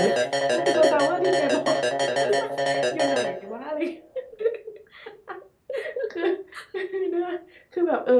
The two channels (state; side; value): identical; both; correlation 1.00